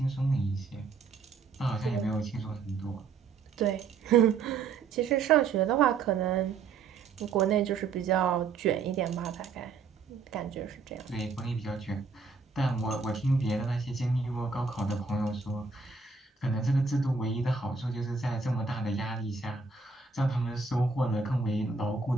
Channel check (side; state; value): left; quieter; 4.8 dB